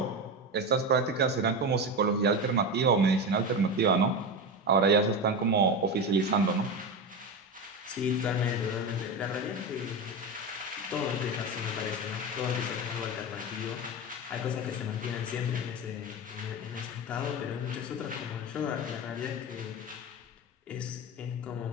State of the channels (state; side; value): normal; both; correlation 0.20